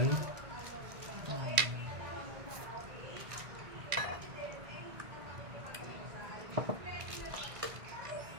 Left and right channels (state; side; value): late; left; 2.0 ms